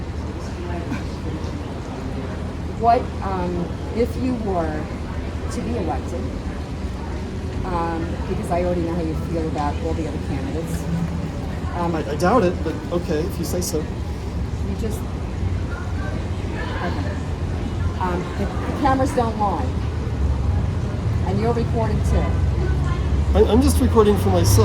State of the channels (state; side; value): identical; both; correlation 1.00